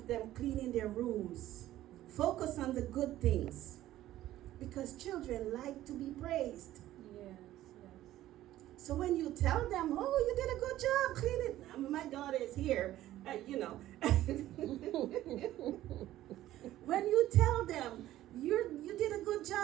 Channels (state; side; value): quieter; left; 14.1 dB